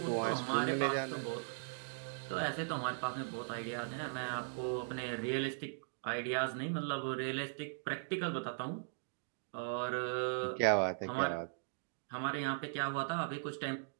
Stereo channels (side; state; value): left; silent; digital silence